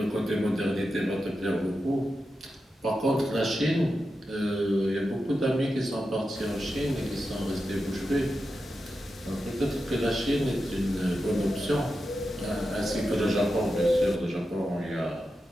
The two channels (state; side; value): normal; both; correlation 0.90